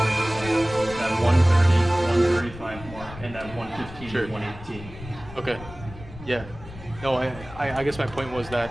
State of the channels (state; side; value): noise; left; rumble, 15 dB below the sound